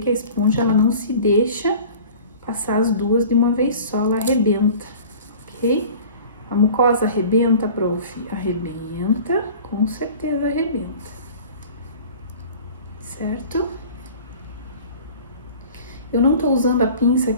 a esponja, ela não se deixa passar as duas de uma vez só, ela arrebenta, ok? A mucosa arrebenta, prof? Arrebenta, com certeza arrebenta, certo? Eu não tô usando a pinça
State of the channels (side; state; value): both; inverted; correlation -0.43